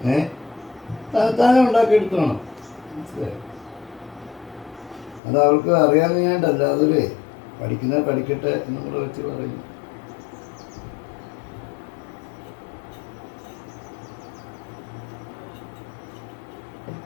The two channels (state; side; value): drops out; right; at 5.2 s